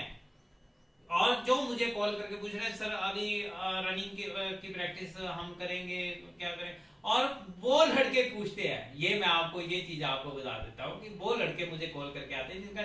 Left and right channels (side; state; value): both; identical; correlation 1.00